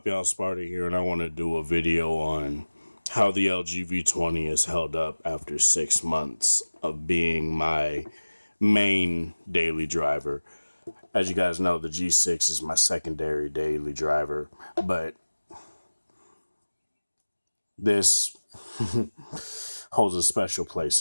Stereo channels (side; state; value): both; inverted; correlation -1.00